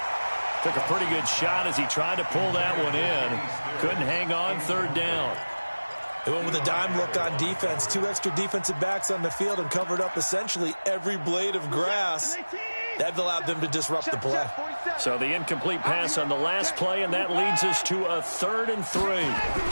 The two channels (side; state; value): both; inverted; correlation -1.00